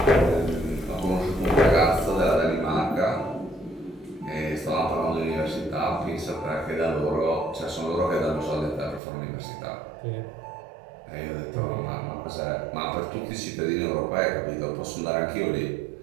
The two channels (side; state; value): left; drops out; at 9.0 s